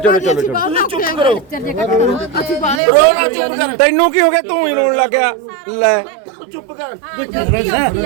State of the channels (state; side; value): drops out; left; at 2.8 s